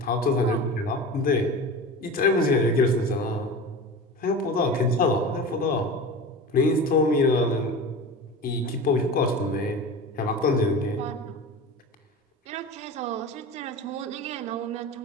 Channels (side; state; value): both; normal; correlation 0.31